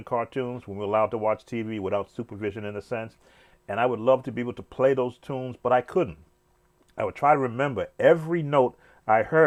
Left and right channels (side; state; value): both; identical; correlation 1.00